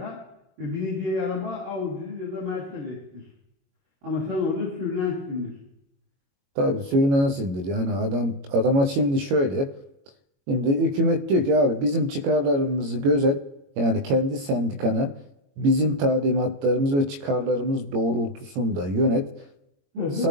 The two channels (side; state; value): left; late; 22 ms